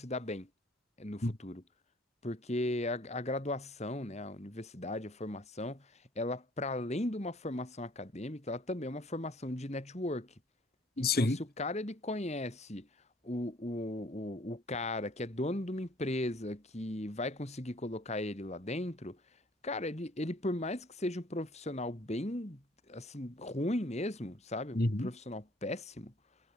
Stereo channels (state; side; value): normal; both; correlation 0.57